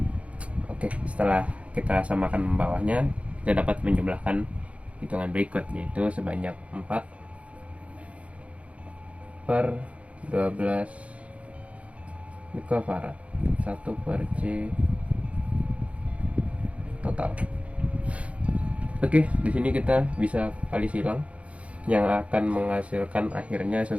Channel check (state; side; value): late; left; 0.064 ms